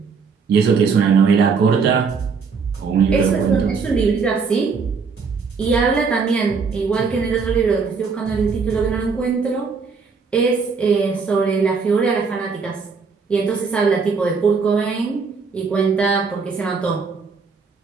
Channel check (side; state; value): left; quieter; 5.2 dB